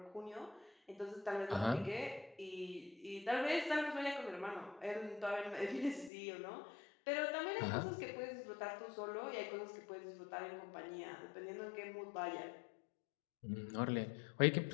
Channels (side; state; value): right; drops out; at 6.1 s